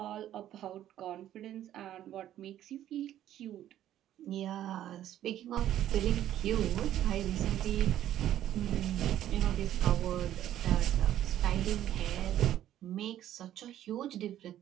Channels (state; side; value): quieter; left; 12.0 dB